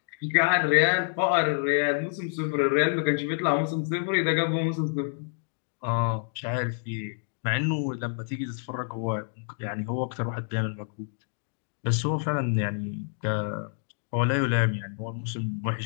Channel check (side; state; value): right; silent; digital silence